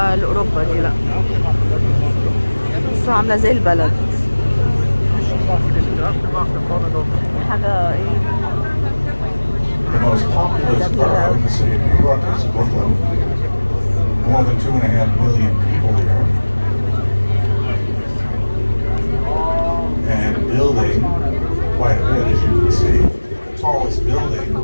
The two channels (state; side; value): inverted; both; correlation -1.00